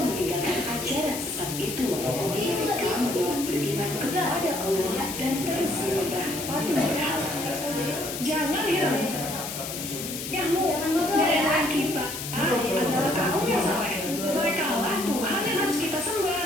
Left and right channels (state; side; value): noise; left; hiss, 7 dB below the sound